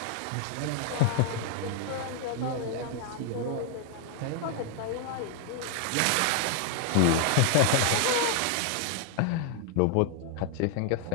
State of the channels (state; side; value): different; both; correlation 0.00